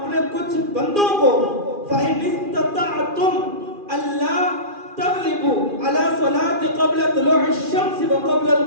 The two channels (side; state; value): left; late; 2.4 ms